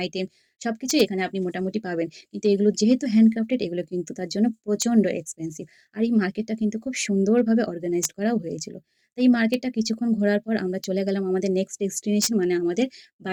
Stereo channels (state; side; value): identical; both; correlation 1.00